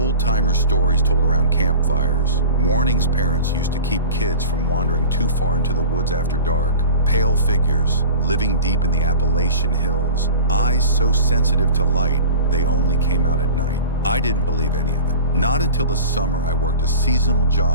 stories told around campfires, warnings parents used to keep kids from wandering too far into the woods after dark, pale figures living deep in the Appalachian hills, eyes so sensitive to light they only came out at night. I didn't believe any of it. Not until the summer I worked a seasonal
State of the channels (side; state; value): both; inverted; correlation -0.37